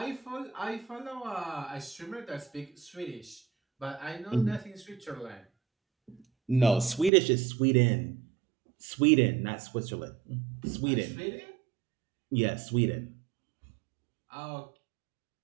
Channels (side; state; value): left; drops out; at 7.1 s